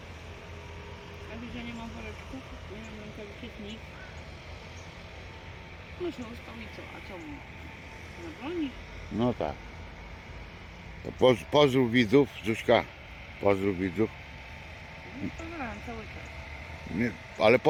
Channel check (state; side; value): identical; both; correlation 1.00